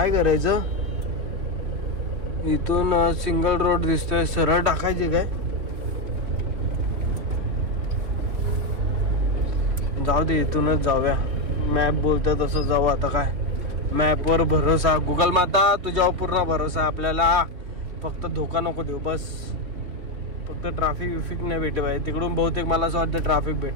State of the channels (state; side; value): late; left; 3.4 ms